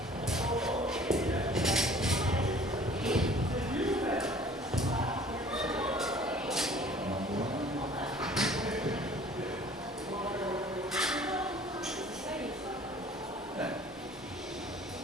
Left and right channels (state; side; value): normal; both; correlation 0.51